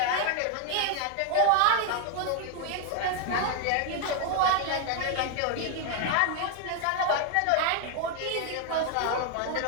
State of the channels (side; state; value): both; different; correlation 0.01